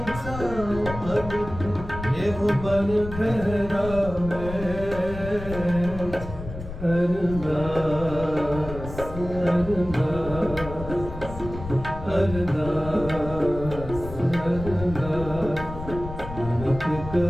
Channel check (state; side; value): noise; left; rumble, 10 dB below the sound